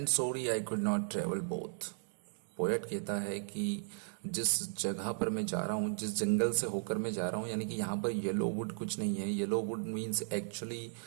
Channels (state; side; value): silent; left; digital silence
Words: sorry I could not travel both. Poet कहता है कि जिस जगह पर मैं जा रहा हूँ, जिस जंगल से होकर मैं जा रहा हूँ, यानी कि यहाँ पर येलो वुड कुछ नहीं है। Yellow would means actually